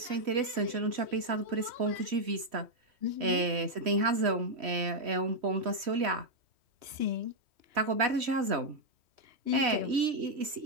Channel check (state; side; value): late; left; 3.1 ms